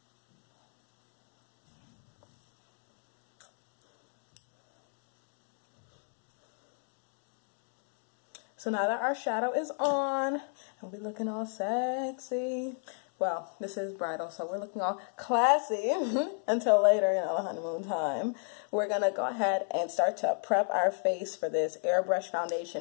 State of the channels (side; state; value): right; silent; 56 dB below the other